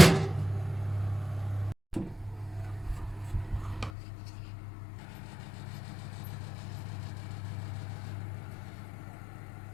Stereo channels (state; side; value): drops out; right; at 3.9 s